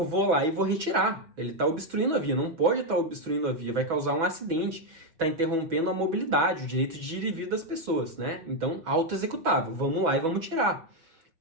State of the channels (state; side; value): late; left; 6.1 ms